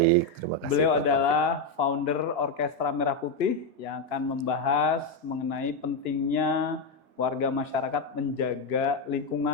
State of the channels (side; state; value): left; late; 6.2 ms